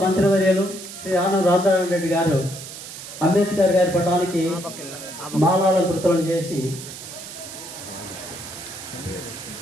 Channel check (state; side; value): noise; right; hiss, 12 dB below the sound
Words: మంత్రివర్యులు శ్రీ ఆనం రామనారాయణ రెడ్డి గారు అంబేద్కర్ గారి పటానికి మాలాలంకృతం చేసి